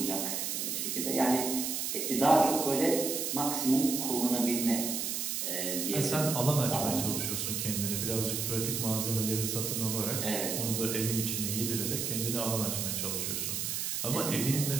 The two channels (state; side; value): noise; right; hiss, 1 dB below the sound